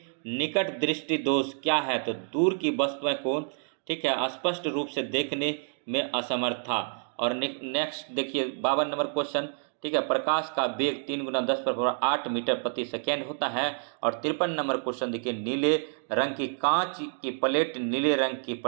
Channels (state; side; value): silent; left; 59 dB below the other